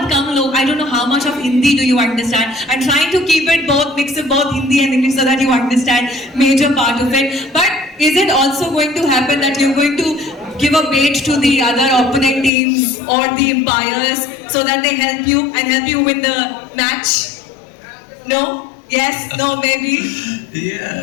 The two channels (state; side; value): drops out; right; at 12.5 s